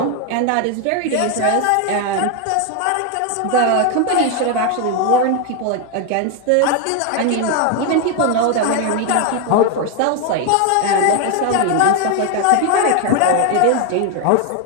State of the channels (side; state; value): both; different; correlation 0.01